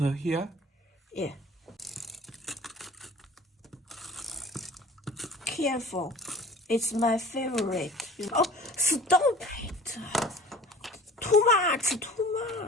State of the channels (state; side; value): normal; both; correlation 0.43